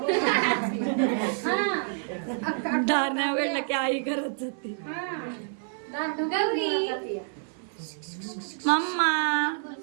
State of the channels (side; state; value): left; silent; 59 dB below the other